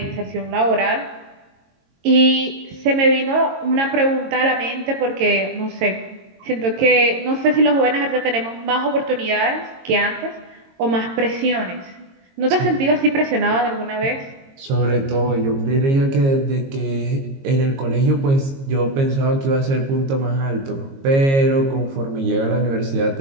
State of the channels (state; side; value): late; left; 22 ms